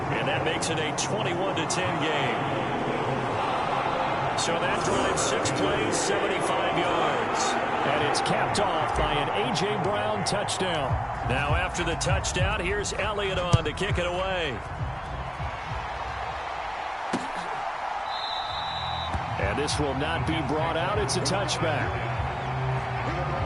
that makes it a 21-10 game. So that drives 6 plays, 75 yards. And it's capped off by an A.J. Brown touchdown. Now after the touchdown, here's Elliott on to kick it away. And this will not be brought out. It's a touchback.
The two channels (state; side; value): identical; both; correlation 1.00